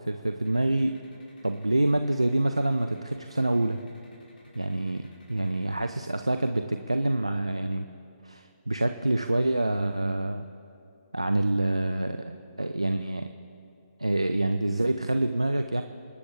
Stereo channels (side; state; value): both; inverted; correlation -0.96